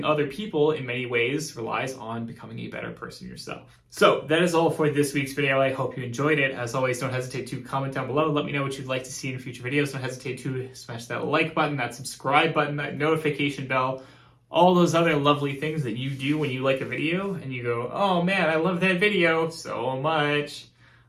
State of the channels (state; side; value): identical; both; correlation 1.00